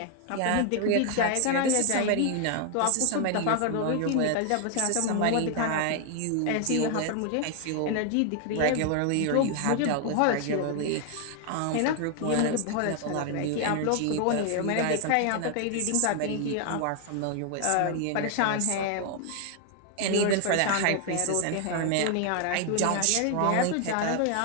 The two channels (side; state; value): both; different; correlation 0.00